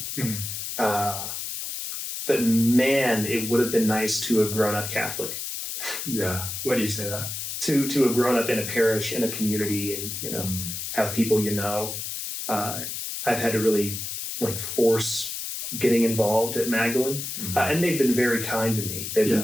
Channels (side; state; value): left; noise; hiss, 5 dB below the sound